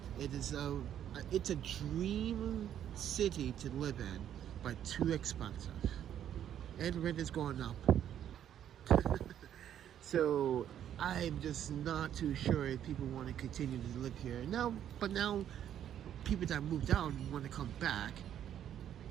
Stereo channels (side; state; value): left; quieter; 10.2 dB